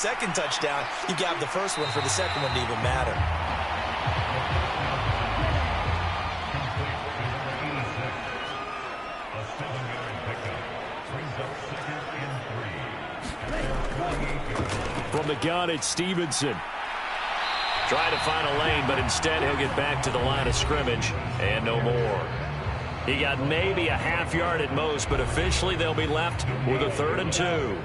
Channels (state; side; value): identical; both; correlation 1.00